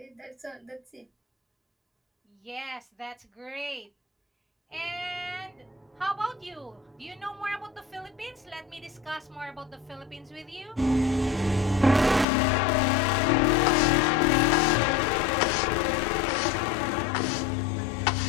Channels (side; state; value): right; drops out; at 12.2 s